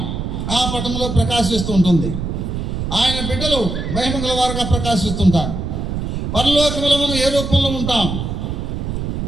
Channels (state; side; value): noise; right; rumble, 3 dB below the sound